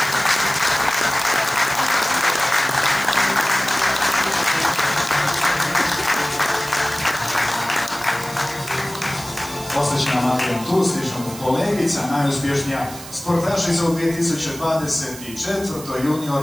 Osjećna Marijan tu, slično kolegica, najuspješnija sportašica u 2024.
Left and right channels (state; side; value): noise; right; hiss, 14 dB below the sound